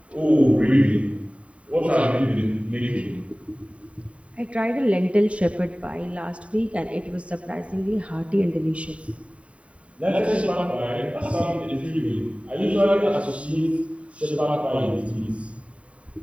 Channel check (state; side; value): late; left; 0.064 ms